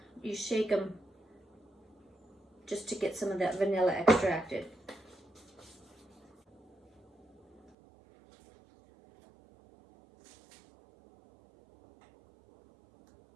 You shake them just to get some of that vanilla extracted.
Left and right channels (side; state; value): left; drops out; at 7.7 s